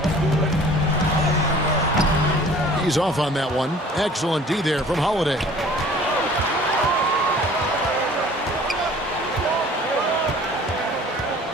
He's off on that one. Excellent D there from Holiday.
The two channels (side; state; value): both; normal; correlation 0.49